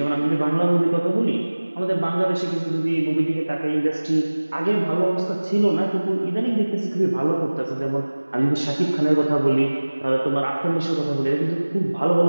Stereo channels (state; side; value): inverted; both; correlation -1.00